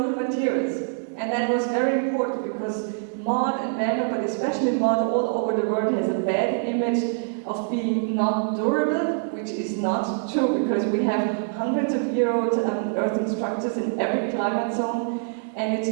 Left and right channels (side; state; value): left; silent; digital silence